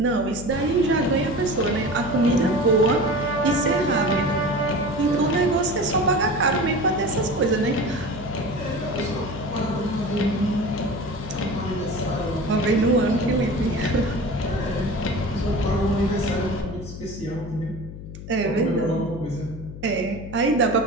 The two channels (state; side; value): noise; left; hum, 12 dB below the sound